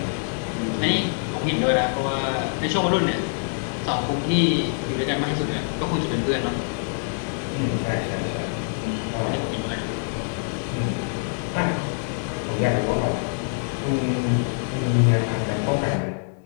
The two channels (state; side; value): silent; right; digital silence